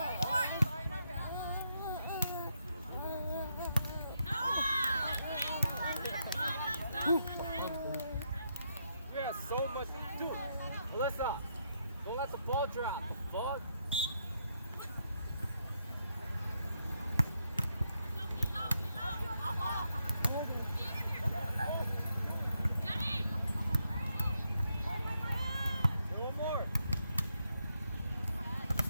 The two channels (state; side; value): inverted; both; correlation -0.79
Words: We have so much to do. Alyssa, don't let the ball drop. Ball. One more.